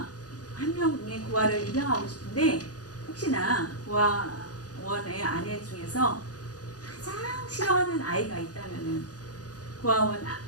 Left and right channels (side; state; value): right; late; 0.68 ms